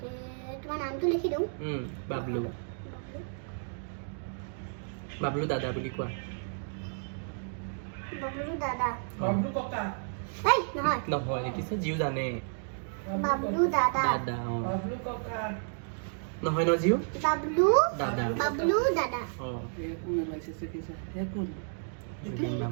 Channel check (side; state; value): left; silent; digital silence